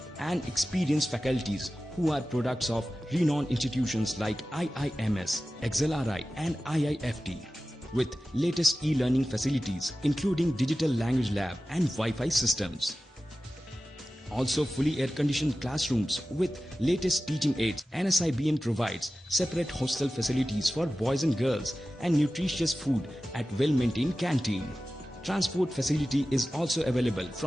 and experienced faculties who are products of renowned institutions like IIMS, XLRI and IIFT. With latest e-learning facilities including digital language lab and Wi-Fi systems. Also fully air-conditioned classrooms with latest teaching aids. NSIBM provides separate hostel facilities for boys and girls and nutritious food at well-maintained canteen. Transport facility is also available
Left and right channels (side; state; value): both; normal; correlation 0.95